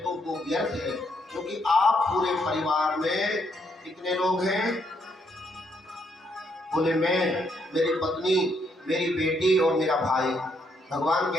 तो वो व्यर्थ है, क्योंकि आप पूरे परिवार में कितने लोग हैं? बोले मैं, मेरी पत्नी, मेरी बेटी और मेरा भाई। भगवान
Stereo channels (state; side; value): normal; both; correlation 0.74